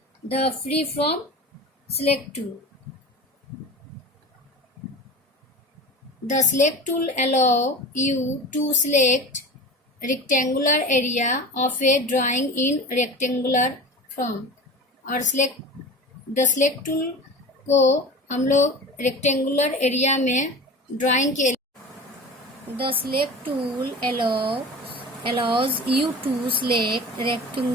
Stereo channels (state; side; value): normal; both; correlation 0.34